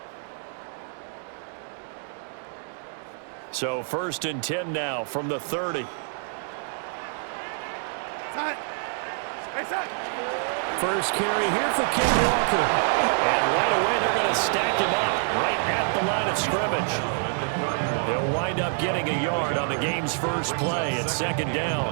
So 1st and 10 now from the 30. First carry here for Ken Walker. And right away they're going to stack him up right at the line of scrimmage. They'll wind up getting a yard on the game's first play at 2nd down.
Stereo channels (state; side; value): silent; left; 58 dB below the other